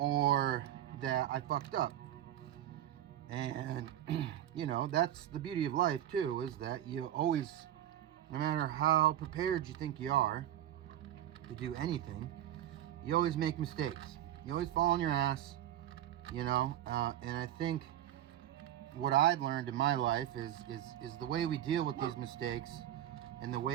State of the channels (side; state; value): left; quieter; 12.1 dB